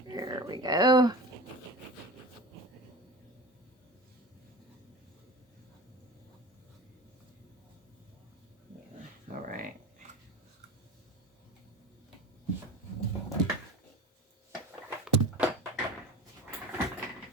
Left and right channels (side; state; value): both; normal; correlation 0.35